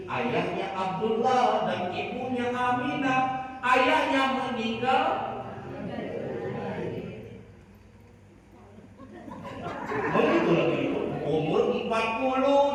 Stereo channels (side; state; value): both; identical; correlation 1.00